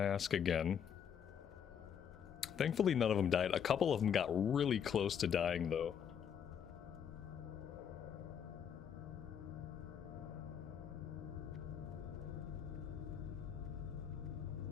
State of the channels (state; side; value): quieter; right; 8.1 dB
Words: again. Thankfully, none of them died. A couple of them got really close to dying, though.